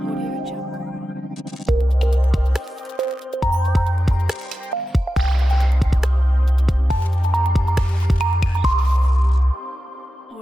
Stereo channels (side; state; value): both; normal; correlation 0.93